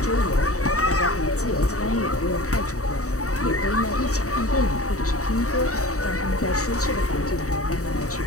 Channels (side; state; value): right; late; 0.65 ms